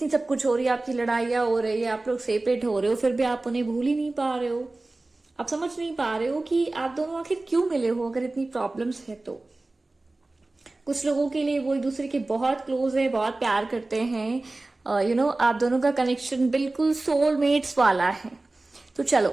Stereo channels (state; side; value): quieter; left; 3.0 dB